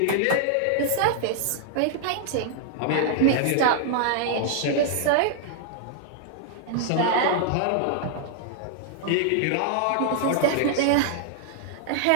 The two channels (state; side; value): different; both; correlation -0.01